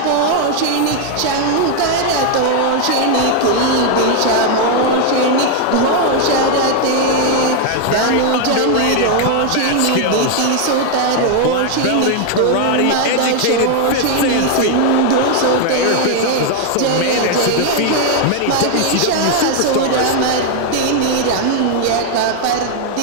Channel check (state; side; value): different; both; correlation 0.00